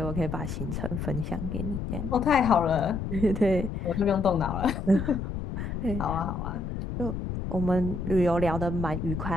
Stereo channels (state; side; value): noise; left; rumble, 5 dB below the sound